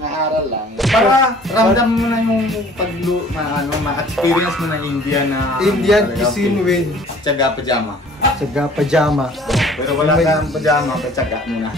lang. Para ramdam mo na yung ma-experience mo na Indian cuisine with tsaga pajama. Tsaga pajama. Pero wala kang pajama, tsaga mo na.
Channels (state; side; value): normal; both; correlation 0.51